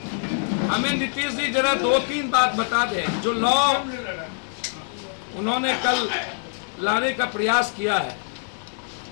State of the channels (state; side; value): silent; right; 62 dB below the other